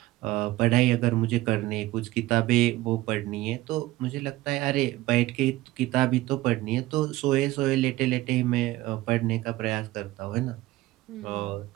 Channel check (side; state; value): left; quieter; 17.5 dB